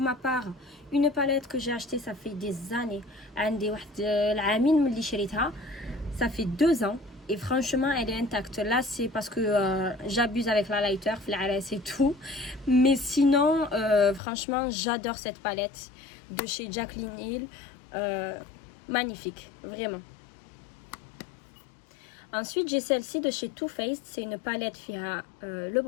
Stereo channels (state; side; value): drops out; right; at 14.2 s